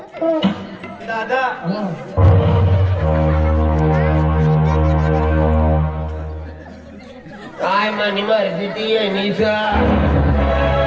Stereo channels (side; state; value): both; identical; correlation 1.00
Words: दादा काय मनी मर्जी ती येणीच